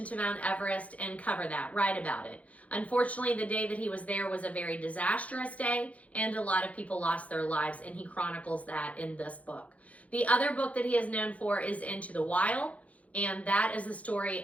to Mount Everest and cover that, write about it. Unfortunately, the day that he was there was a very disastrous day, and a lot of people lost their lives, and he chronicles that in this book. The other book that he is known for is Into the Wild, and that is the story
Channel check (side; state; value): right; late; 0.067 ms